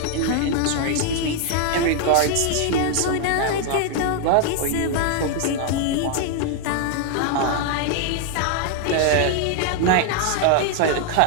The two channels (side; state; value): both; different; correlation 0.00